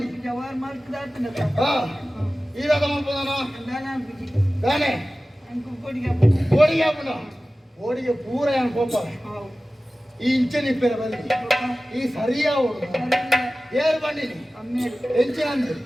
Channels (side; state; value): both; normal; correlation 0.96